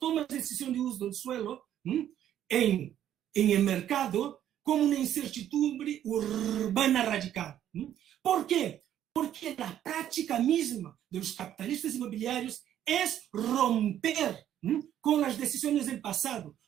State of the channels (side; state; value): left; quieter; 11.0 dB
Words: de decisión de uso del suelo en el mercado como una incertidumbre urbana radical. ¿Por qué? Porque la práctica misma de los capitalistas inmobiliarios es romper con las decisiones del pasado,